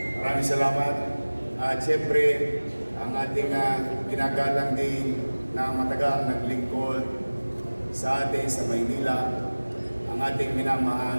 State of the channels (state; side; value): inverted; both; correlation -1.00